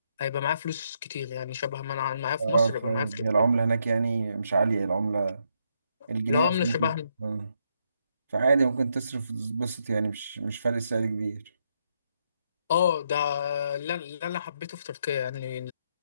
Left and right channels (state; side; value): inverted; both; correlation -0.77